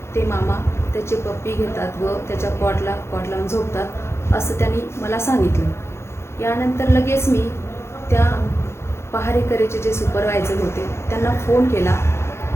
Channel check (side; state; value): right; late; 0.13 ms